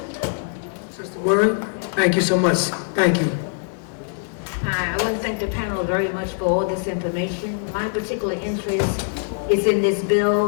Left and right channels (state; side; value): silent; right; digital silence